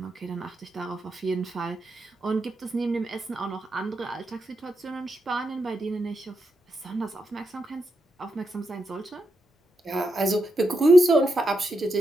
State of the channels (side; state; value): both; normal; correlation 0.85